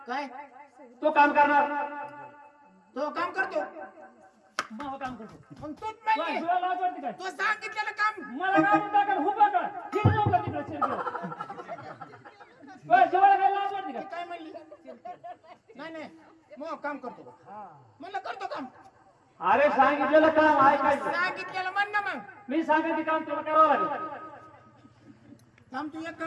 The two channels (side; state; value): both; identical; correlation 1.00